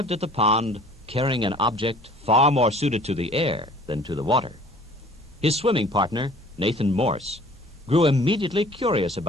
at the pond carrying an object far more suited to the air than to the water. His swimming partner, Nathan Morse, grew immediately curious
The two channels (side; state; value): both; normal; correlation 0.50